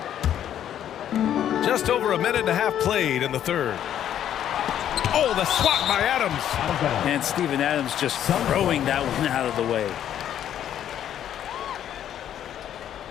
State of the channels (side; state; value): right; quieter; 10.4 dB